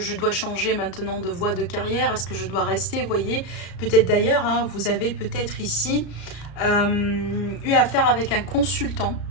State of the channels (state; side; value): late; right; 34 ms